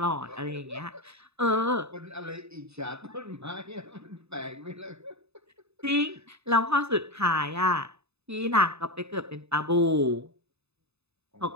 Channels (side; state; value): left; late; 0.80 ms